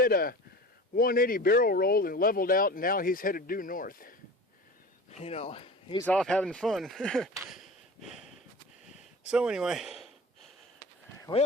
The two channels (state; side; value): normal; both; correlation 0.36